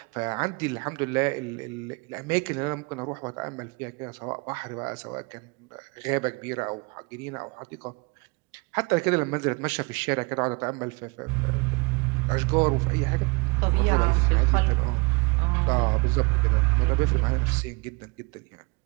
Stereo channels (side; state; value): left; quieter; 28.6 dB